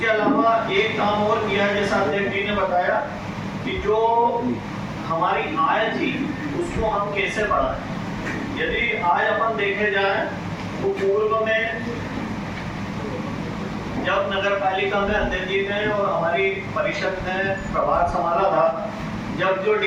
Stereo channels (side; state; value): both; identical; correlation 1.00